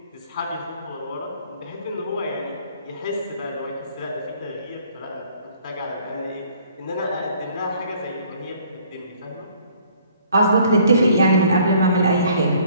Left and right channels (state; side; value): inverted; both; correlation -0.59